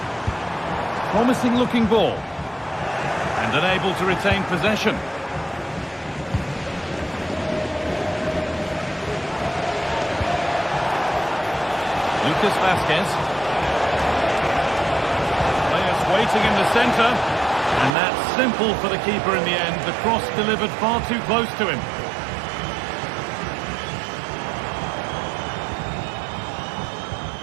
Promising looking ball. And unable to retain possession. Lucas Vazquez. Players waiting in the centre. And that's simple for the keeper in the end. The cross delivered far too close to him.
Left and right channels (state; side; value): drops out; left; at 17.9 s